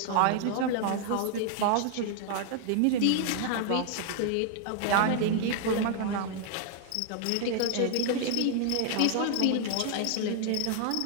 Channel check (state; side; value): different; both; correlation 0.00